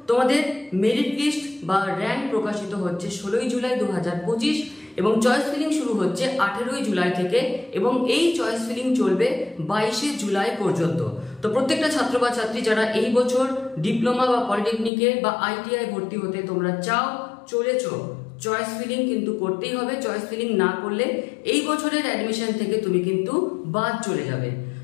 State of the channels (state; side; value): drops out; right; at 14.9 s